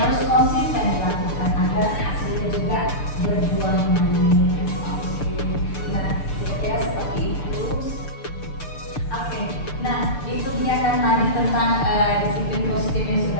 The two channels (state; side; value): late; right; 6.8 ms